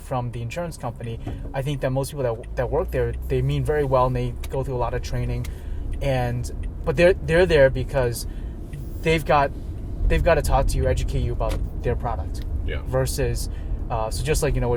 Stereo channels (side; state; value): both; identical; correlation 1.00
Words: the insurance company, I think that most people that work there, they mean very well and they go through a lot of training, but they're there because they've got to talk to you, educate you about their product. Yeah. Versus so just like